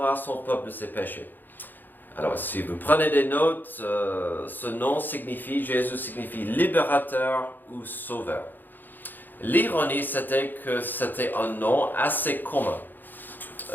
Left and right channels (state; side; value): late; right; 0.089 ms